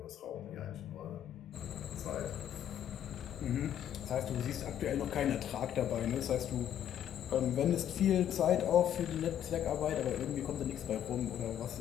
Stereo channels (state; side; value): quieter; right; 10.3 dB